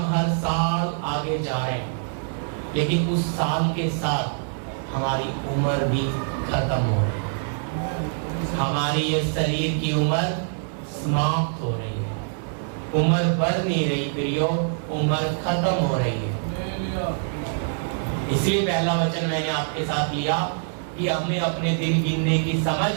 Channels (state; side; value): silent; left; digital silence